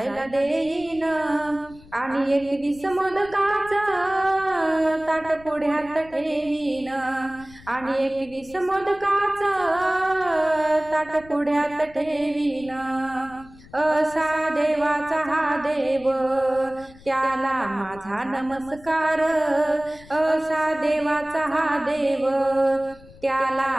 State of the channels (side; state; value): left; noise; rumble, 22 dB below the sound